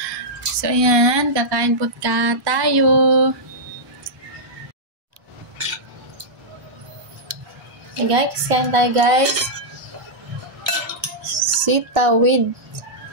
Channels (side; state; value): left; late; 1.4 ms